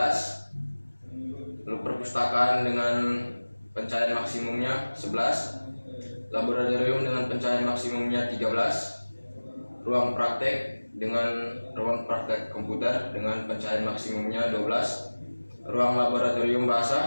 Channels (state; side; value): inverted; both; correlation -1.00